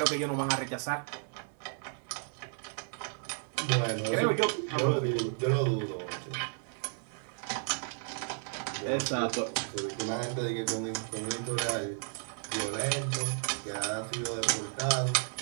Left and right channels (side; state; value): left; silent; 56 dB below the other